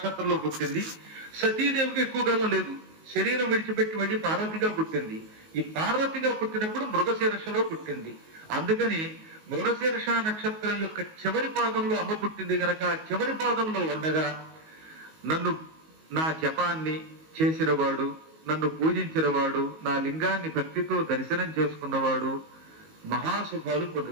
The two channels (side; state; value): left; late; 19 ms